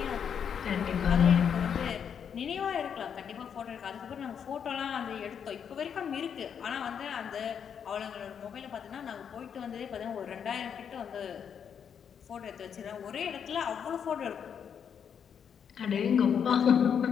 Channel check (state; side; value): quieter; right; 7.7 dB